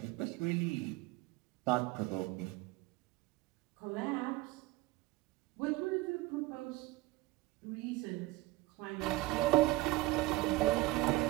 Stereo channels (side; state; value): left; quieter; 18.9 dB